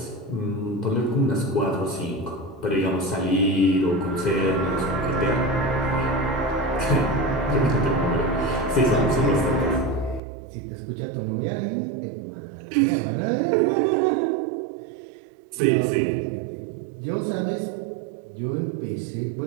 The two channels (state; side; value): drops out; left; at 10.2 s